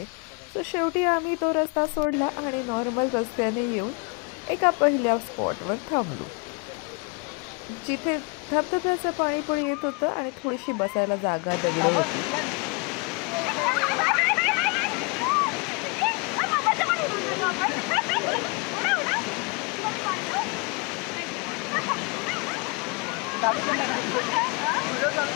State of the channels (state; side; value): quieter; right; 32.1 dB